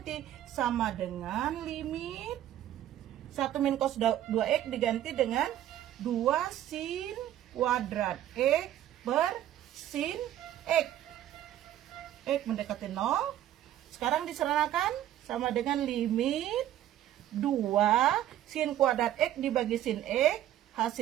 sama dengan limit 1 min cos 2X diganti dengan 2 sin kuadrat X per sin X. X mendekati 0. Sekarang diserahkan sama dengan limit 2 sin kuadrat X dibagi sin X.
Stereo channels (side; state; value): left; quieter; 12.3 dB